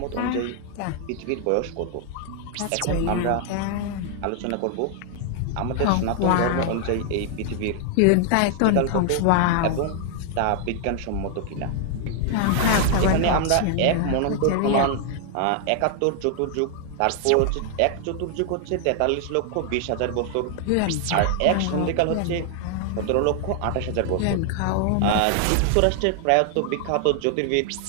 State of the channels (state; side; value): different; both; correlation 0.00